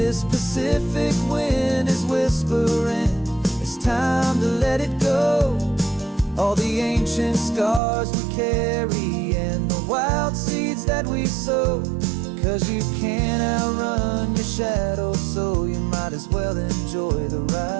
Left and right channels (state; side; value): drops out; left; at 7.8 s